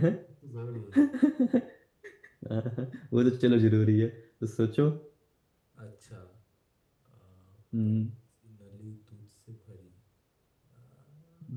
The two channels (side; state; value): both; identical; correlation 1.00